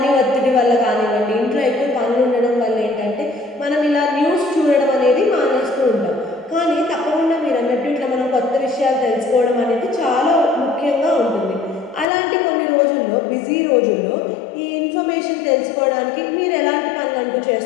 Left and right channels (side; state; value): right; drops out; at 12.1 s